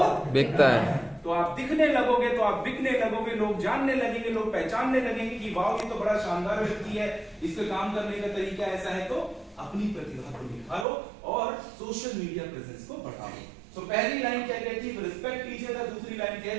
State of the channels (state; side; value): drops out; left; at 10.9 s